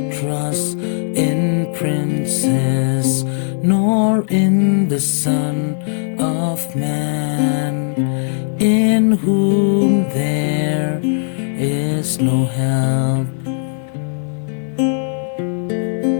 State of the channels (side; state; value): right; silent; digital silence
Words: trust in princes, nor in the Son of Man, in whom there is no help.